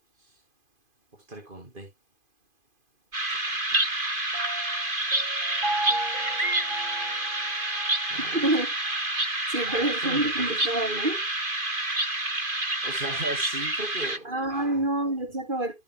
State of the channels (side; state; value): left; late; 2.5 ms